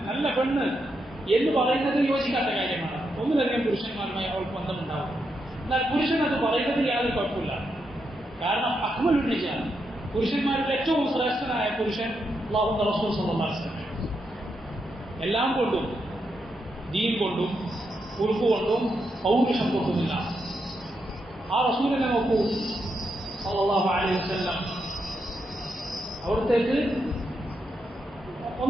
നല്ല പെണ്ണ് എന്ന് പറയുന്നത് യോജിക്കാത്ത കാര്യമാണ്. ഒന്നിലധികം പുരുഷന്മാരുമായി അവൾക്ക് ബന്ധമുണ്ടാവും. എന്നാൽ പുരുഷൻ അത് പറയുന്നത് യാതൊരു കുഴപ്പമില്ല. കാരണം അക്മലുൻ റിജാൽ, പുരുഷന്മാരിൽ ഏറ്റവും ശ്രേഷ്ഠനായ പുരുഷൻ അല്ലാഹുവിന്റെ റസൂൽ സല്ലല്ലാഹു അലൈഹി വസല്ലം. എല്ലാം കൊണ്ടും, ദീൻ കൊണ്ടും ഉറുഫ് കൊണ്ടും പൗരുഷം കൊണ്ടുമില്ല. ആ റസൂലിനെ നോക്കൂ സല്ലല്ലാഹു അലൈഹി വസല്ലം. അവിടത്തേക്ക്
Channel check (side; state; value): both; normal; correlation 0.82